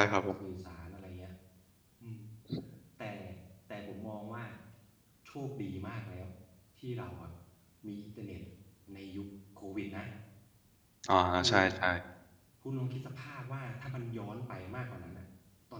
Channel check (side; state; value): both; identical; correlation 1.00